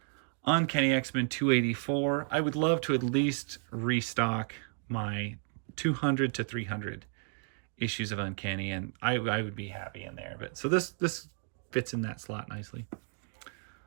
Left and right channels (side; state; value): left; silent; 56 dB below the other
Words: Uncanny X-Men 284. I would love to at least restock my 200 to 300 issues of Uncanny, and I would be happy in there. But so this fits in that slot nicely.